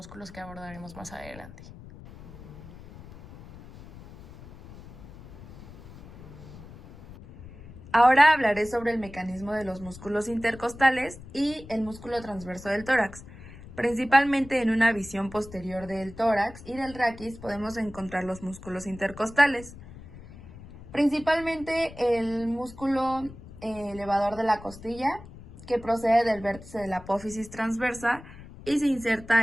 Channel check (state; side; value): noise; left; rumble, 17 dB below the sound